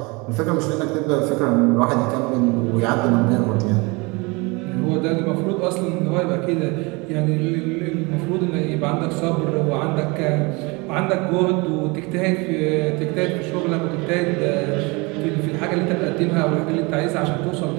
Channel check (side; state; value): left; quieter; 27.0 dB